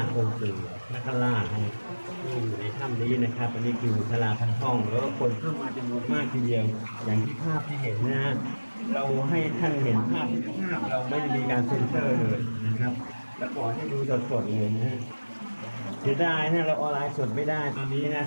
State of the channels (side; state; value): both; inverted; correlation -1.00